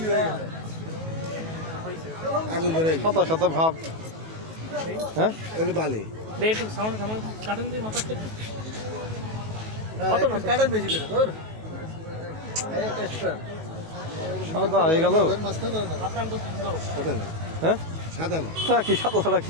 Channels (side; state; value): left; late; 19 ms